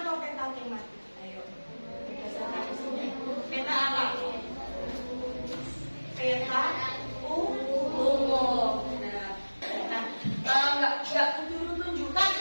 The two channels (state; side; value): inverted; both; correlation -1.00